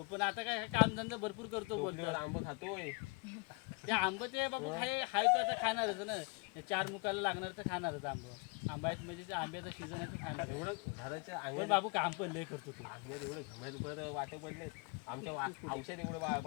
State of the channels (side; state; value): right; quieter; 30.4 dB